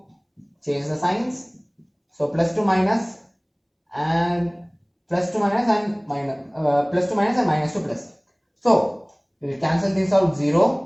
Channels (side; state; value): both; identical; correlation 1.00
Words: change the signs. So plus 2 minus and plus 2 minus and minus, plus 2 minus and minus 2 plus. So we will cancel this out